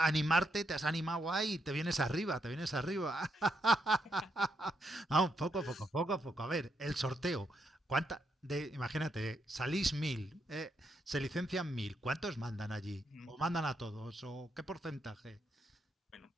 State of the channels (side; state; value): both; normal; correlation 0.79